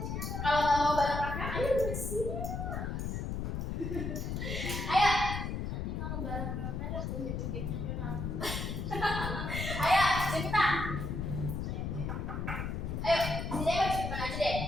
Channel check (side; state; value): left; noise; rumble, 3 dB below the sound